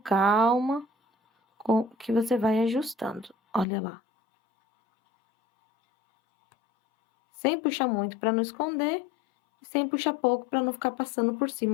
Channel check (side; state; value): right; drops out; at 3.7 s